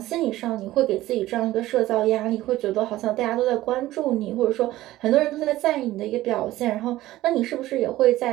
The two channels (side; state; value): left; quieter; 15.9 dB